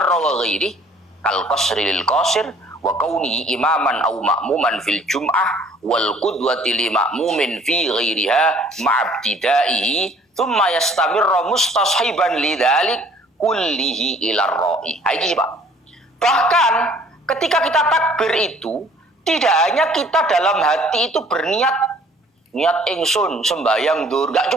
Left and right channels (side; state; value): both; normal; correlation 0.56